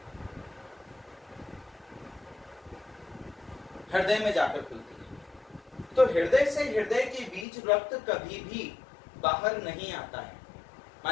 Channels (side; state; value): right; drops out; at 7.5 s